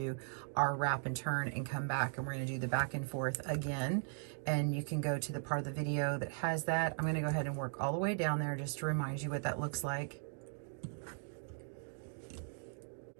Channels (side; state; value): left; silent; 52 dB below the other